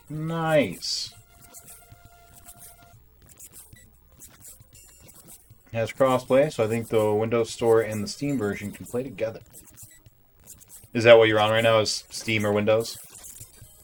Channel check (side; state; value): both; identical; correlation 1.00